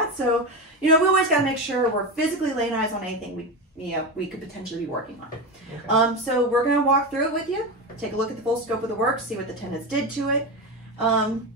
So, you know, we always got to make sure we're physically laying eyes on anything we could potentially be working on. Okay. So we're going to walk through it with you, take a look at the full scope of the work, see what the tenants did to it. And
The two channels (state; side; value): normal; both; correlation 0.18